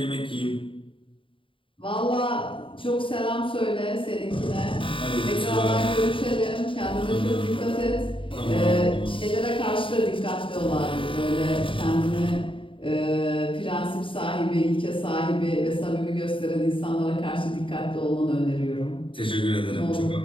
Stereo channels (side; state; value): right; late; 0.25 ms